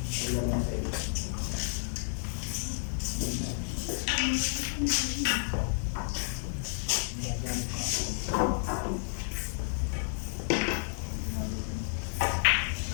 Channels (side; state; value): right; silent; 57 dB below the other